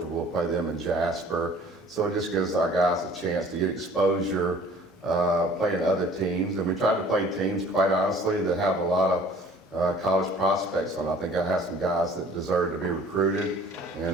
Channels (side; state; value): both; normal; correlation 0.51